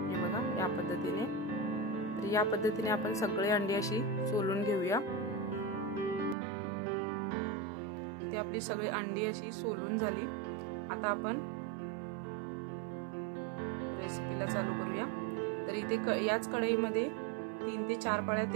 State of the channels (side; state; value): left; drops out; at 6.4 s